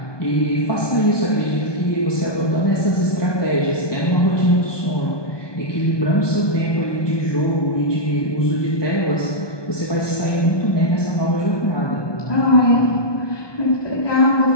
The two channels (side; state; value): right; late; 1.2 ms